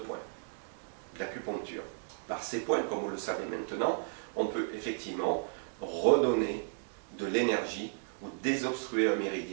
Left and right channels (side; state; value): left; silent; digital silence